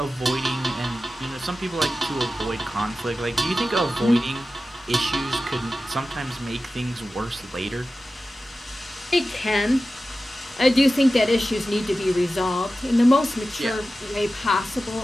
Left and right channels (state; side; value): normal; both; correlation 0.94